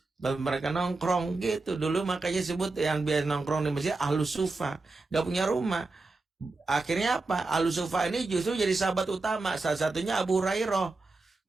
tempat mereka nongkrong gitu. Dulu makanya sebut yang biasa nongkrong di masjid ahlus sufah. Gak punya rumah. Akhirnya apa? Ahlus sufah ini justru jadi sahabat utama. Salah satunya Abu Hurairah.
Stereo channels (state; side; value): quieter; left; 3.5 dB